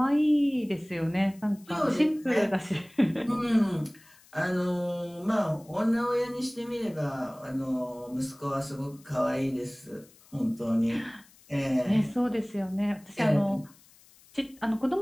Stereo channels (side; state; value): left; noise; hiss, 27 dB below the sound